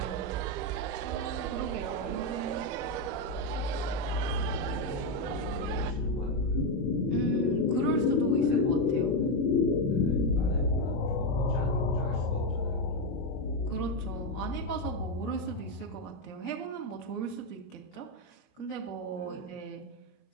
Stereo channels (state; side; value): late; right; 21 ms